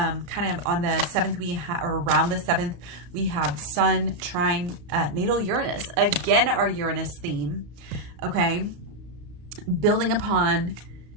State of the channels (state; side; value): late; left; 34 ms